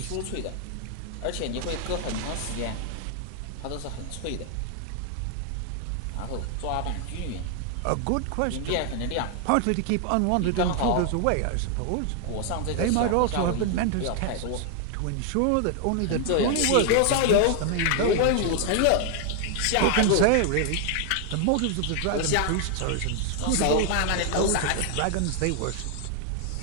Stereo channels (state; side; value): different; both; correlation 0.00